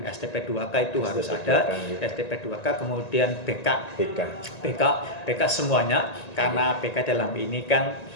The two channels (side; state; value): right; late; 1.9 ms